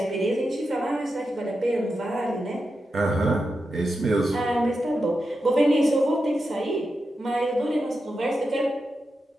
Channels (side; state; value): both; normal; correlation 0.88